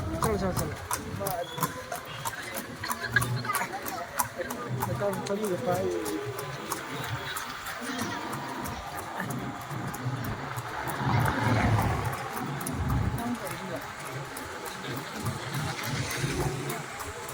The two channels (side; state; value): both; identical; correlation 1.00